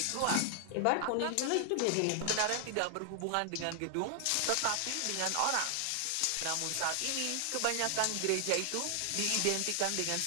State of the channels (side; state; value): both; different; correlation 0.00